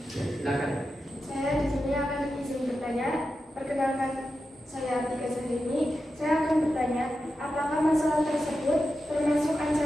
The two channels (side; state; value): both; normal; correlation 0.90